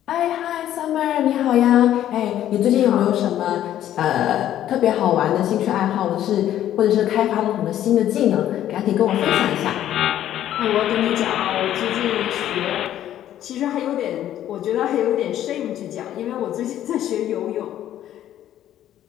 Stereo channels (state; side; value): quieter; right; 11.8 dB